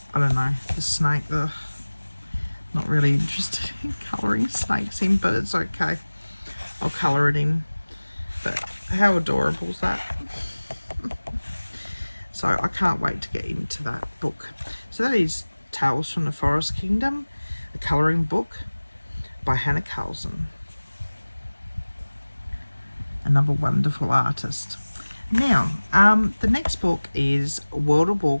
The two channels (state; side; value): inverted; both; correlation -1.00